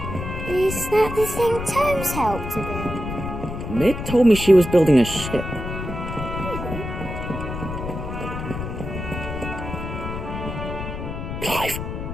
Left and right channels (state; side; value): noise; left; rumble, 6 dB below the sound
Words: Is that the thing Tomes helped to build? Mid told me she was building a ship. Clive,